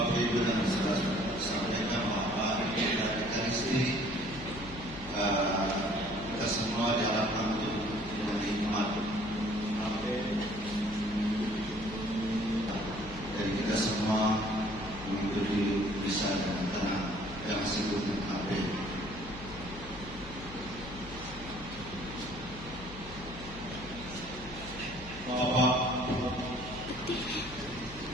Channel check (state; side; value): noise; left; hum, 14 dB below the sound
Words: Ibu dan saudara sampaikan bahwa hari ini dari Ekaristi kita semua diharapkan untuk menikmat dan kita semua mengikuti bisa dengan tenang yang disebut AB. Bapak